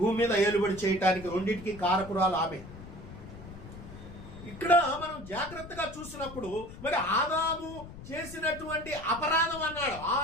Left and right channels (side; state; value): left; noise; rumble, 14 dB below the sound